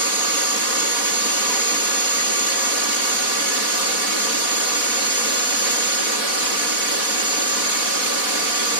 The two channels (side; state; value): right; late; 4.1 ms